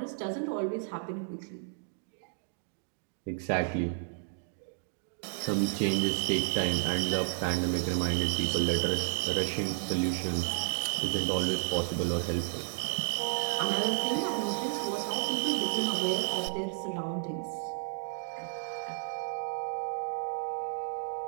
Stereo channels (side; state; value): left; silent; digital silence